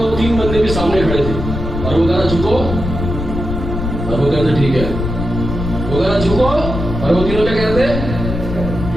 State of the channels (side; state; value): left; noise; rumble, 5 dB below the sound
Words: तीन बंदे भी सामने खड़े थे। और वो कह रहा झुको, और वो कहते ठीक है। वो कह रहा झुको, और वो तीनों क्या कहते?